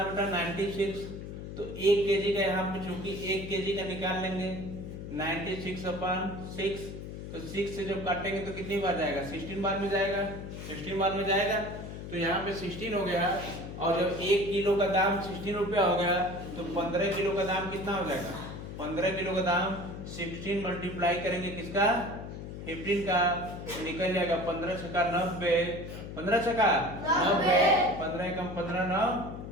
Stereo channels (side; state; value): left; noise; hum, 9 dB below the sound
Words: बेटा 96, तो 1 केजी का यहाँ पे चूंकि 1 केजी का निकाल लेंगे 96/6, तो 6 से जब काटेंगे तो कितनी बार जाएगा 16 बार में जाएगा, 16 बार में जाएगा, तो यहाँ पे 16 हो गया। और जब 1 किलो का दाम 16 रुपया हो गया तो 15 किलो का दाम कितना हो जाएगा, 15 किलो का दाम 16 मल्टीप्लाई करेंगे किसका 15 का, तो निकल जाएगा 15 छक्का 90, 15 छक्का 90, 15 कम 15 9